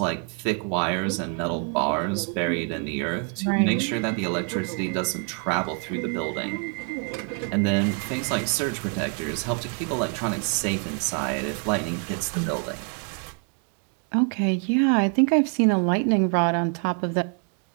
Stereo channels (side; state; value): left; quieter; 39.3 dB